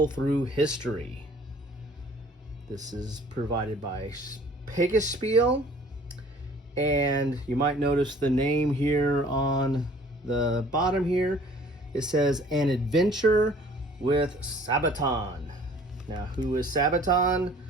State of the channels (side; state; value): both; normal; correlation 0.52